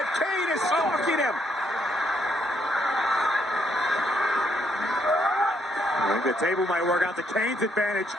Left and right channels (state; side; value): normal; both; correlation 0.73